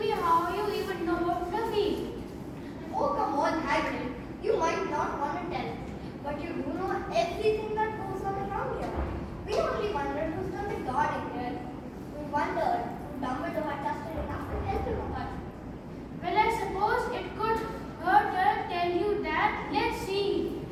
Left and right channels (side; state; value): both; identical; correlation 1.00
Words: how you even know about Fluffy. Oh, come on, Hagrid. You might not want to tell, but you do know everything that goes on around here. We only wondered who's done the guarding here. We wondered who Dumbledore had trusted enough to help him out. Well, I suppose it could hurt her tell you that. Let's see.